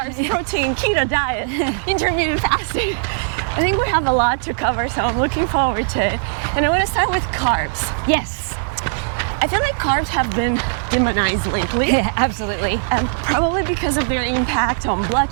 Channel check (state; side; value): silent; left; digital silence